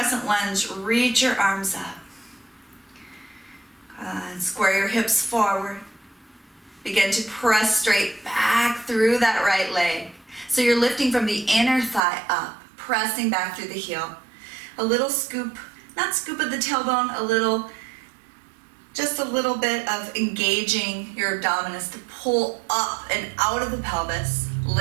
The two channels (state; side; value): drops out; left; at 12.0 s